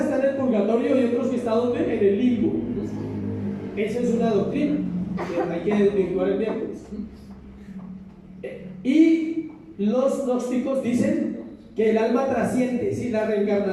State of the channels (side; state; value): both; identical; correlation 1.00